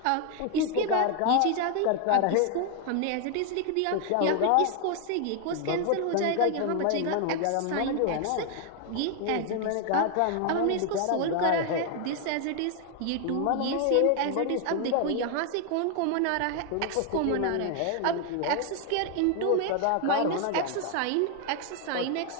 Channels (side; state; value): both; different; correlation 0.00